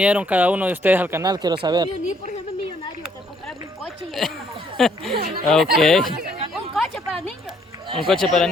cada uno de ustedes al canal, quiero saber. Me uní por ser millonario, te comprarme un coche y una Ok, un coche para niños. un coche para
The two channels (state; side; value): normal; both; correlation 0.67